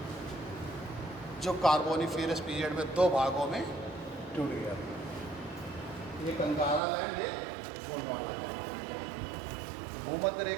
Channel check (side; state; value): left; drops out; at 6.8 s